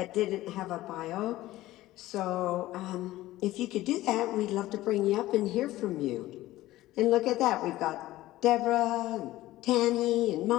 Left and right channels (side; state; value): right; quieter; 16.3 dB